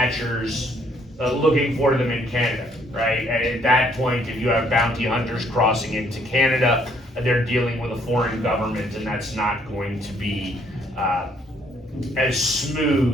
looking for them in Canada, right? And at that point, if you have bounty hunters crossing into Canada, they're dealing with a foreign government, and that's not going to be as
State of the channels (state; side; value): normal; both; correlation 0.66